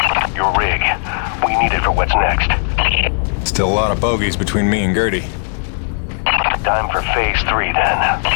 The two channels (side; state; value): right; silent; 68 dB below the other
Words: Your rig. We need it for what's next. Still a lot of bogeys between me and Gertie. Time for Phase 3, then.